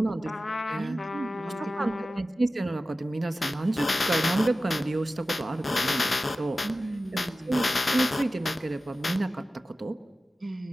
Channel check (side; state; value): both; normal; correlation 0.95